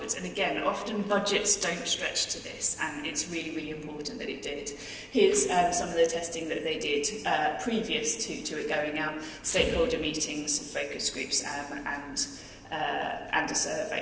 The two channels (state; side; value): identical; both; correlation 1.00